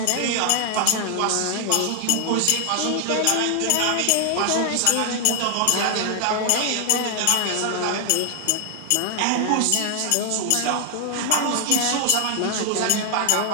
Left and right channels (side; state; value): both; different; correlation 0.00